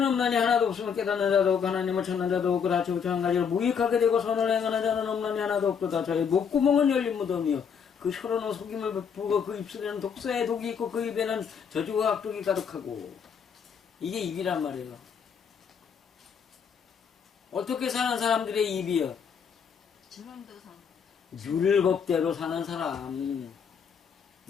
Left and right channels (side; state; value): right; quieter; 6.9 dB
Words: 없나니 하나도 없으면 깨닫는 자도 없고 하나님을 찾는 자도 없고 다 지우쳐 한 가지로 무익하게 되고 선을 행하는 자는 없나니 하나도 없도다. 저희 목구멍은 열린 무덤이요 그 혀로는 속임을 베푸고 그 입술에는 독사의 독이 있고 그 입에는 저주와 악독이 가득하고. 이게 입이란 말이에요. 어떻게 사는 사람들의 입이요? 율법대로 사는 사람.